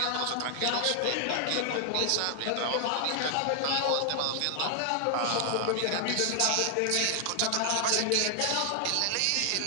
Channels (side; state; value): both; different; correlation 0.00